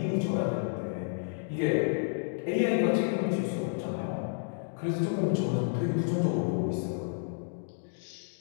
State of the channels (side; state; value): right; silent; digital silence